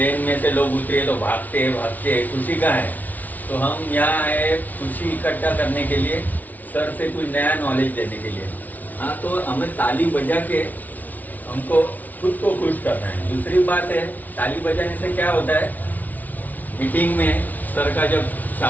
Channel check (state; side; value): late; right; 0.078 ms